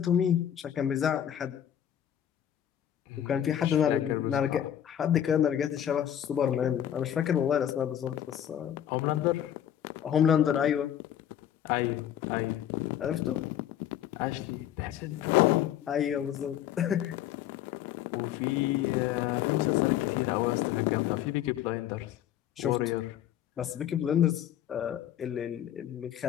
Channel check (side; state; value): right; quieter; 10.6 dB